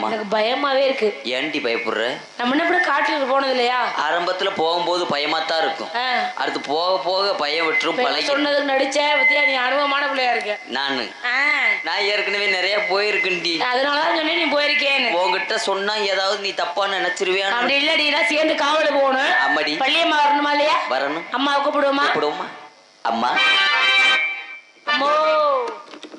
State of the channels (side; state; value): both; identical; correlation 1.00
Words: எனக்கு பயமாவே இருக்கு. ஏன்டி பயப்படுற? நம்ம என்ன காட்டுக்கு போனது இல்லையா? ஆரம்பத்துல போகும்போது பயமாத்தான் இருக்கும். அடுத்து போக போக பயம் விட்டுரும். பழகி சொன்னதுக்கு நடிச்ச பத்தியா, நீ அனுபவமான பிள்ளையா இருக்க. நான் ஏற்கனவே நிறைய போயிருக்கேன்டி. அதனாலதான் சொன்னேன் நீ போயிருக்கேன்னு. உங்ககிட்ட சொன்னா ஏதாவது நீ தப்பா நினைச்சிருவியா? அப்படி இல்லடி, நான் சேர்ந்து காவலுக்கு போகணும். அம்மாடி பள்ளியம்மா வரணுமா இல்லையா? வரணும். அம்மாவை கூப்பிடுவோமா? கூப்பிடுவோமா? அம்மா அம்மோ.